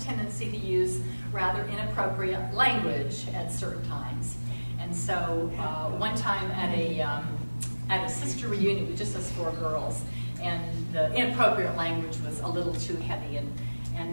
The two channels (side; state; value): both; inverted; correlation -1.00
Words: tendency to use rather inappropriate language at certain times. And so one time at a sister reunion with just us 4 girls, and the inappropriate language was a little too heavy,